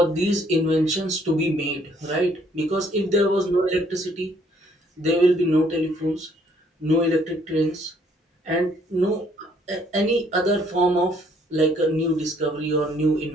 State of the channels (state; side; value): normal; both; correlation 0.65